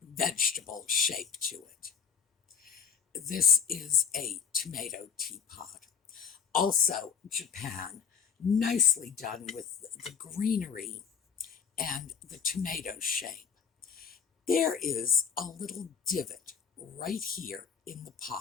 vegetable shape to it. This is a tomato teapot. Also, Japan, nicely done with the greenery and the tomato shape. There is a little divot right here in the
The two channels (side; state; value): right; quieter; 7.0 dB